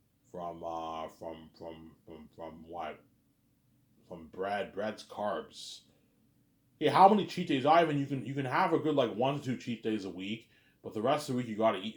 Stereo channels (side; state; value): both; identical; correlation 1.00